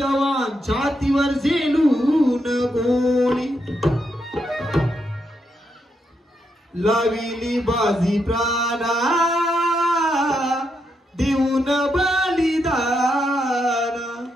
छातीवर झेलून गोळी लाविली बाजी प्राणा देऊन बलिदान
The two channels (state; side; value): normal; both; correlation 0.81